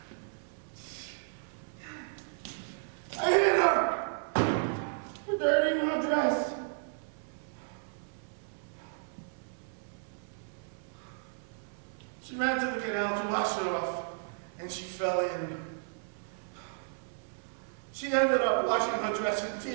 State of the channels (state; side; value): silent; left; 55 dB below the other